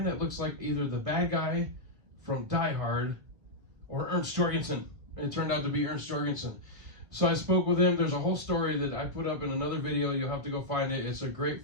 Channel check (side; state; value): left; late; 2.0 ms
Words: that looks like either the bad guy from Die Hard or Ernst Jorgenson. And it turned out to be Ernst Jorgenson. So I spoke with him. There's a whole story that I put up in another video. You'll have to go find it. It's a great